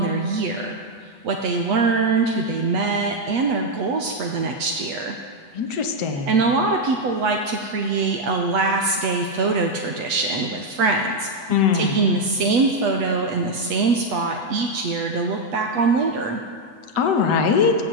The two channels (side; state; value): left; late; 8.3 ms